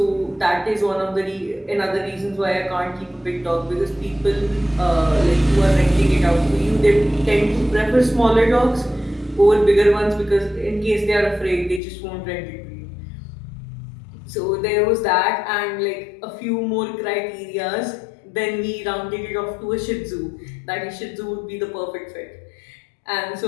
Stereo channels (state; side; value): drops out; right; at 11.8 s